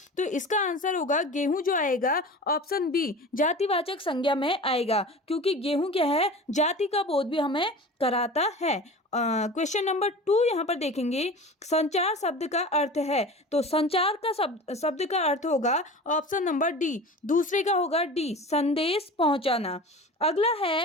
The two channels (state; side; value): normal; both; correlation 0.36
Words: तो इसका आंसर होगा गेहूं जो आएगा ऑप्शन बी, जातिवाचक संज्ञा में आएगा, क्योंकि गेहूं क्या है, जाति का बोध भी हमें कराता है। क्वेश्चन नंबर 2 यहाँ पर देखेंगे, संचार शब्द का अर्थ है। तो संचार का शब्द का अर्थ होगा ऑप्शन नंबर डी, दूसरे का होगा डी, संदेश पहुंचाना। अगला